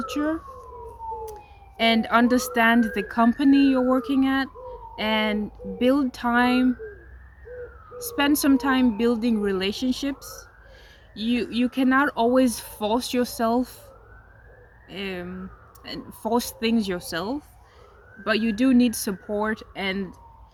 and understand the company you're working at, and build time, spend some time building relationships. You cannot always force yourself, um, and force things yourself, but you do need support. And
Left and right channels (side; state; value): both; identical; correlation 1.00